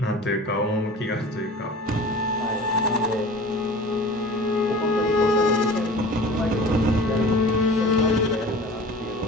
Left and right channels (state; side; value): normal; both; correlation 0.40